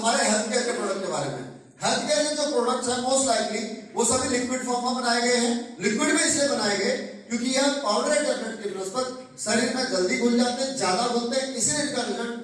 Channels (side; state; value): both; identical; correlation 1.00